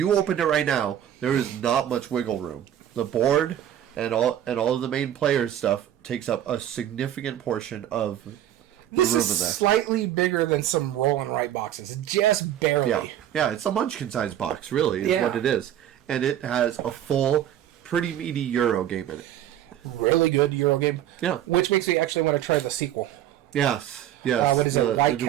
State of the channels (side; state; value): left; quieter; 11.3 dB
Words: opened it right now, there is not much wiggle room. The board and all of the main players' stuff takes up a significant portion of the room in there. This is slightly bigger than some roll and write boxes. Just barely. Yeah, it's a munchkin-sized box, really, is what it is. And it has a full, pretty meaty Euro game in it. Really good Euro game. Yeah. Which makes me actually want to try the sequel. Yes. What is it, White